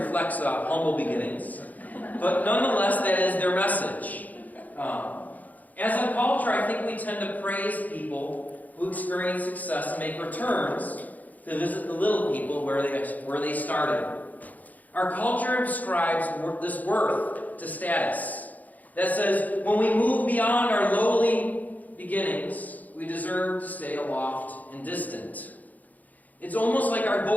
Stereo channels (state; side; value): late; right; 0.079 ms